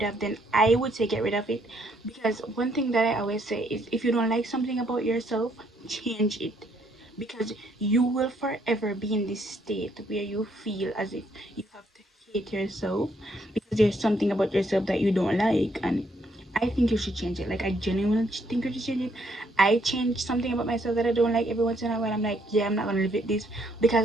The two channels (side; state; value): both; normal; correlation 0.70